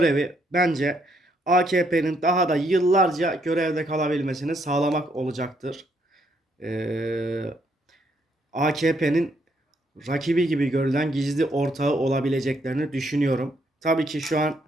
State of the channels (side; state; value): both; normal; correlation 0.73